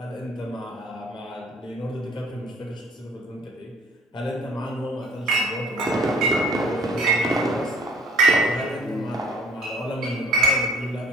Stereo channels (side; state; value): both; normal; correlation 0.53